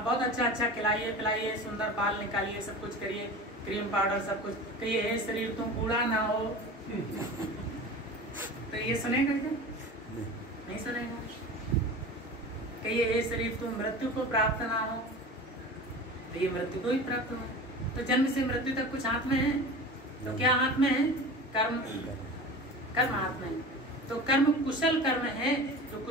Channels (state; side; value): normal; both; correlation 0.34